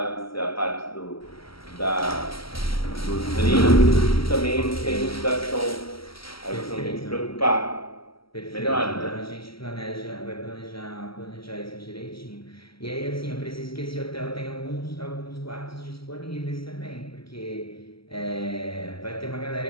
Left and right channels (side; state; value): right; late; 0.75 ms